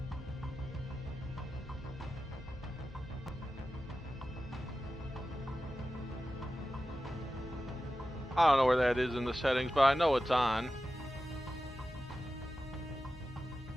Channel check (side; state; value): both; normal; correlation 0.93